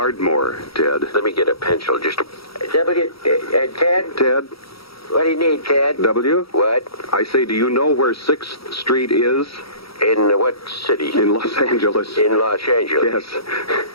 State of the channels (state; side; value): late; right; 0.75 ms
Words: Ted. Let me get a pencil. Just Ted? Ted? What do you need, Ted? W? What? I say, do you know where 6th Street is? In what city? In Los Angeles. In Los Angeles? Yes.